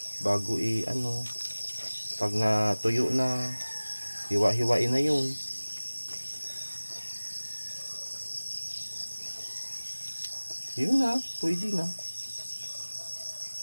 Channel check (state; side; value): inverted; both; correlation -1.00